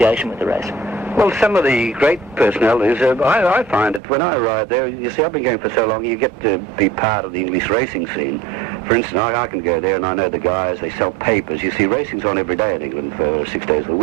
with the race? Well, some of the great personalities, I find that when I ride there, you see, I've been going for so long, you get to be part of the English racing scene. For instance, I can go there and I know the guys, they sell papers. You see, racing's on every day in England for 6 days of the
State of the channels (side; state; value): left; drops out; at 4.0 s